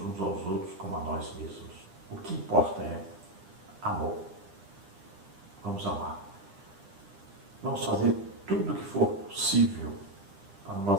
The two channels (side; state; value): left; late; 10 ms